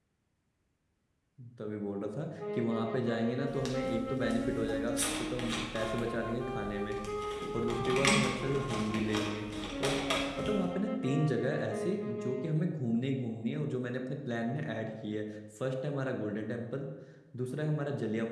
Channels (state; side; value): identical; both; correlation 1.00